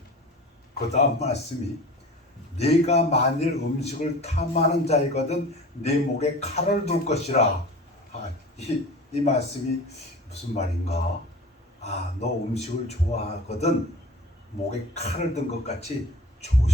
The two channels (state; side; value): normal; both; correlation 0.39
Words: 그 다음 말씀이 네가 만일 음식을 탐하는 자이거든 네 목에 칼을 둘 것이라. 이 말씀이 무슨 말인가? 너 음식을 좋아하거든 목에 칼을 든 것 같이